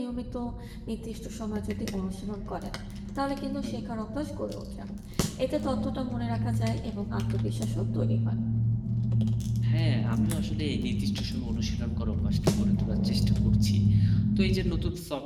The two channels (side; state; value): both; identical; correlation 1.00